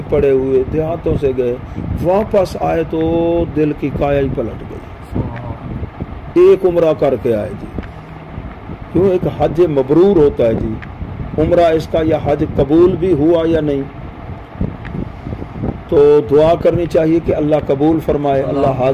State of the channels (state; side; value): identical; both; correlation 1.00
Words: پڑے ہوئے دیہاتوں سے گئے، واپس آئے تو دل کی کایا ہی پلٹ گئی. ایک عمرہ کر کے آئے جی. کیوں؟ ایک حج مبرور ہوتا ہے جی. عمرہ اس کا یا حج قبول بھی ہوا یا نہیں، تو دعا کرنی چاہیے کہ اللہ قبول فرمائے، اللہ